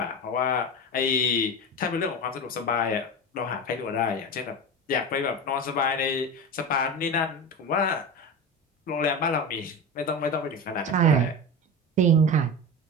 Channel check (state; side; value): normal; both; correlation 0.25